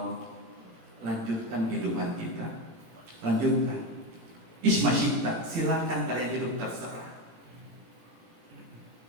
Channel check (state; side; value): late; left; 18 ms